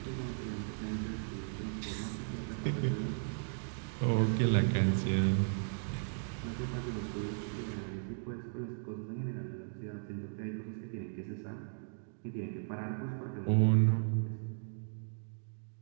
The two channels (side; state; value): left; silent; digital silence